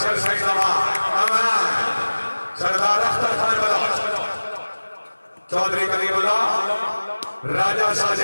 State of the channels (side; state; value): both; inverted; correlation -1.00